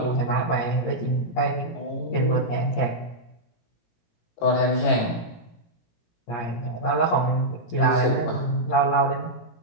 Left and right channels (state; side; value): late; right; 17 ms